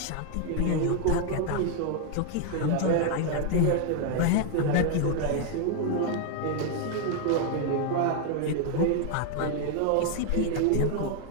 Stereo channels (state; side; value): different; both; correlation 0.00